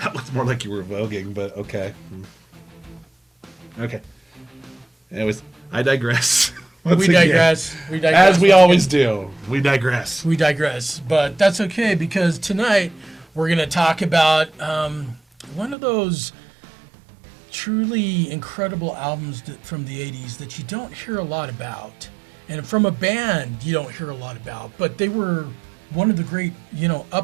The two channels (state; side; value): drops out; left; at 15.8 s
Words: looks more like you were voguing, but okay. Okay. Anyways, I digress. We digress. As we always do. We digress. But that's okay, because tonight we're going to talk about one of those truly incredible albums from the 80s that you don't hear a lot about. And from a band you don't hear a lot about. But they were one of the great,